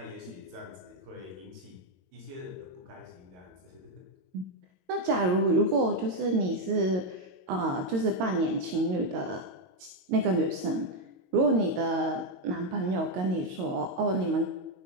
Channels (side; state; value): left; late; 22 ms